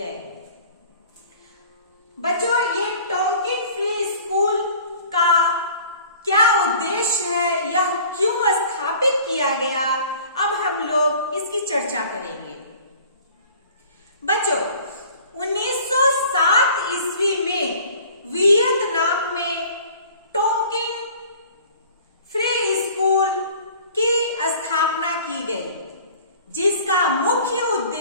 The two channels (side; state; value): both; inverted; correlation -0.48